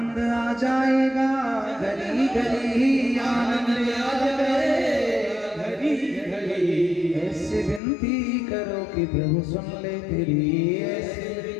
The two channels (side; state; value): right; drops out; at 7.8 s